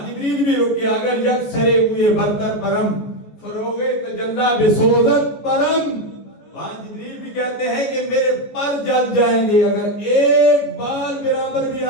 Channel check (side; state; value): right; late; 14 ms